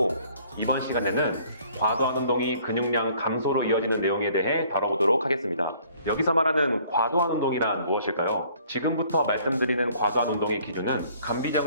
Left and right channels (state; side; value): inverted; both; correlation -0.58